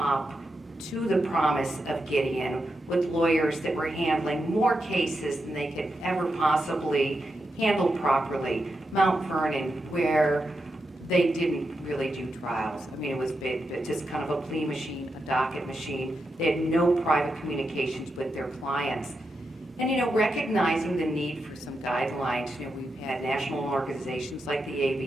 to the promise of Gideon, with lawyers that were handling more cases than they could ever possibly handle properly. Mount Vernon, where they didn't really do trials. I mean, it was just kind of a plea machine, a docket machine. They had no private communications with their clients. And, recognizing the need for some guidelines, we've had national organizations like the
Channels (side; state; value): both; normal; correlation 0.86